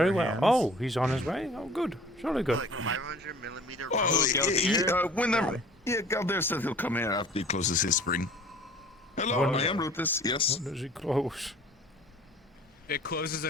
well. Oh, he's on his way. Oh, good. Surely good. 500mm. Oh, whenever. Yeah, Galder says he'll come here after he closes his spring. Hello, I am Rufus. Yes. When does he close? It closes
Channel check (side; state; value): both; normal; correlation 0.48